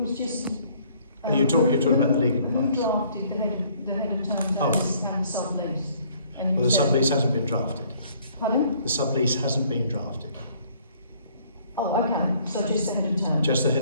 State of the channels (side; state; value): both; inverted; correlation -0.61